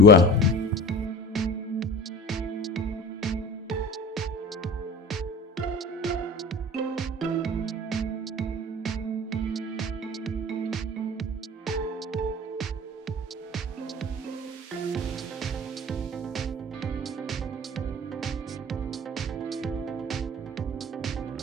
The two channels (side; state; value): both; normal; correlation 0.37